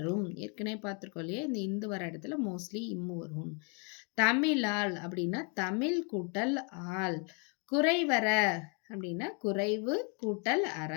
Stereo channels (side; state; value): right; quieter; 36.7 dB